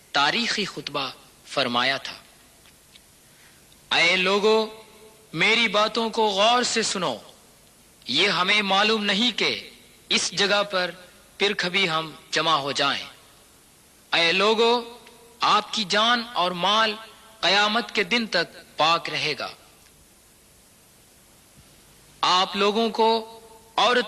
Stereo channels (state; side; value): identical; both; correlation 1.00